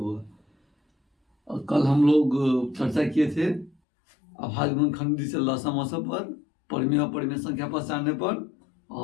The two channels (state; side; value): drops out; right; at 3.8 s